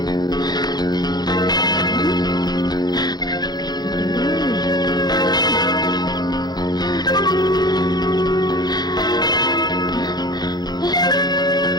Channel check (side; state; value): right; late; 0.20 ms